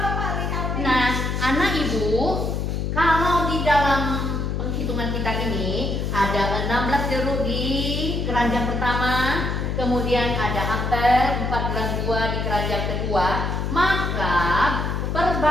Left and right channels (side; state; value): left; noise; hum, 1 dB below the sound